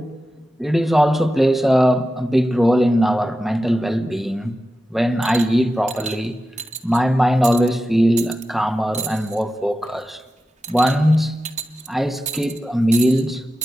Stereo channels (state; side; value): normal; both; correlation 0.92